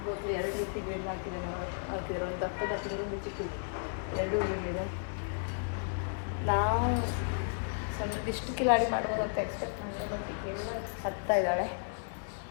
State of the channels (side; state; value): right; silent; 55 dB below the other